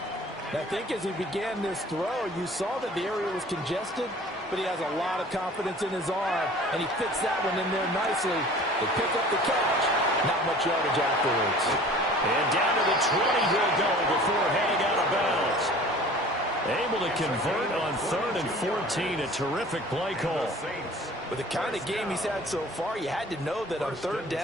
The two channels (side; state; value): both; normal; correlation 0.46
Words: I think as he began this throw, you saw that the area was congested, but he has a lot of confidence in his arm, and he fits that one in there nicely. They pick up the catch. Not much yardage afterwards. And down to the 20 he'll go before heading out of bounds. Able to convert on 3rd and 14. A terrific play call. With the kind of game he's had so far, you had to know that on 3rd